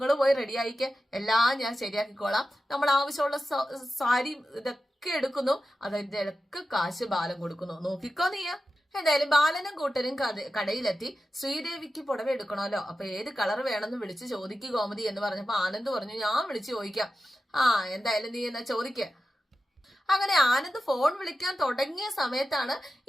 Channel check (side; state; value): both; normal; correlation 0.92